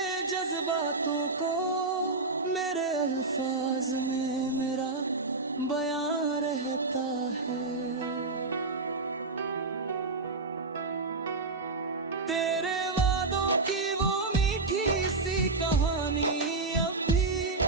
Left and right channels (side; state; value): left; quieter; 3.6 dB